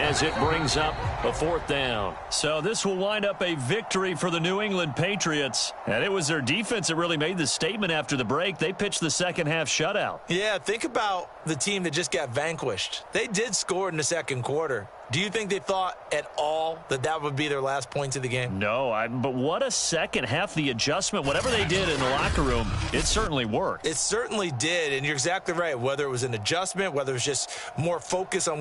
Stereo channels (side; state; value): both; identical; correlation 1.00